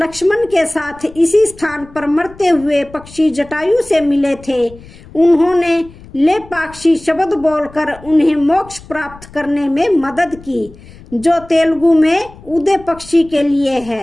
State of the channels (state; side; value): noise; left; rumble, 21 dB below the sound